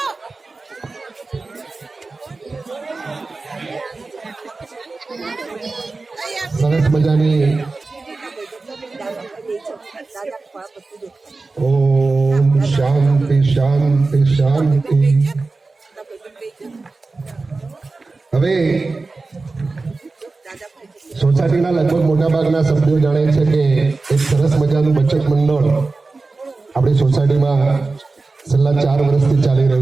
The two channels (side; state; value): left; quieter; 3.7 dB